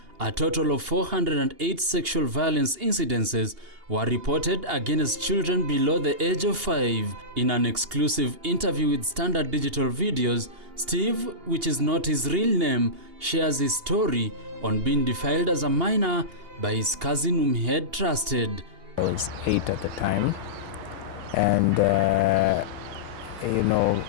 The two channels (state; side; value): late; left; 2.8 ms